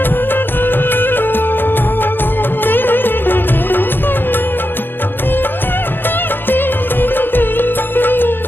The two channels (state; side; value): late; right; 0.098 ms